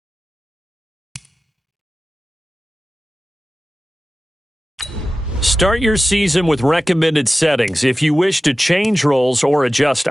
Start your season with recommended settings. If you wish to change roles or adjust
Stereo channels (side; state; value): both; normal; correlation 0.95